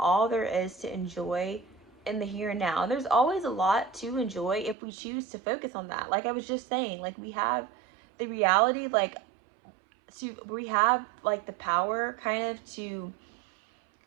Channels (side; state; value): left; drops out; at 4.8 s